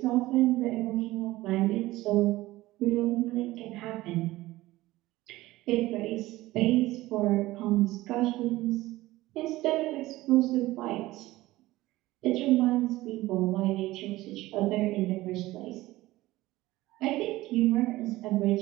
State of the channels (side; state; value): left; quieter; 17.8 dB